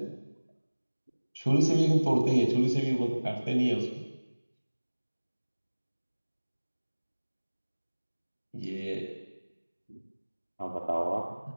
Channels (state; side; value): inverted; both; correlation -1.00